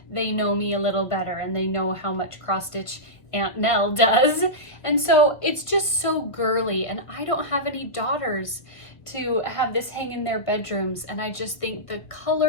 they know me a little better and they know how much cross stitch Aunt Nell does. And so it's just so girly, and I don't have any daughters to have this hang in their bedrooms. And I just think the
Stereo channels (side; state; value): right; late; 1.7 ms